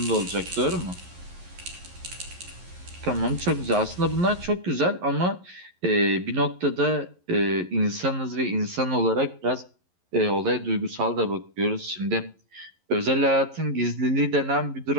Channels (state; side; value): late; left; 11 ms